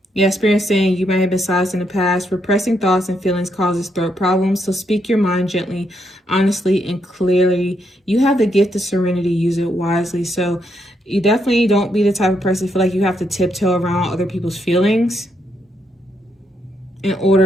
Yeah, Spirit saying you might have been silenced in the past. Repressing thoughts and feelings causes throat problems. So speak your mind gently, honestly, and clearly. You have the gift of serenity. Use it wisely. So you definitely don't be the type of person to feel like you have to tiptoe around other people's feelings in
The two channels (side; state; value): both; normal; correlation 0.77